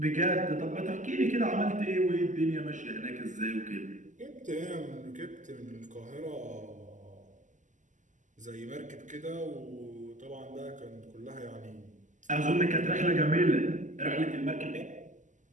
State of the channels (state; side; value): late; left; 0.37 ms